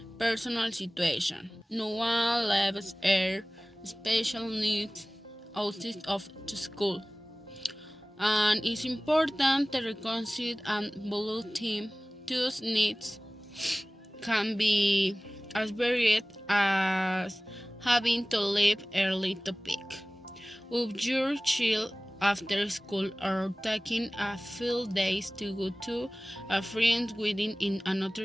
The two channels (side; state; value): both; normal; correlation 0.98